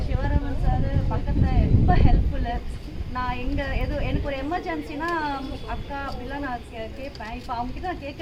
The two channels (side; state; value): both; identical; correlation 1.00